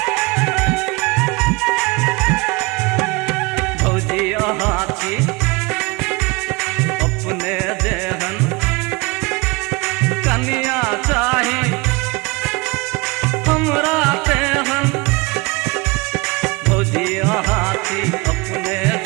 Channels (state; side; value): quieter; left; 26.0 dB